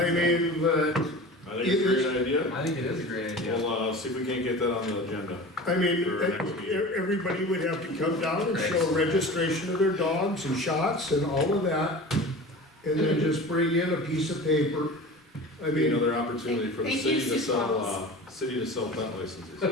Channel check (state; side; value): normal; both; correlation 0.36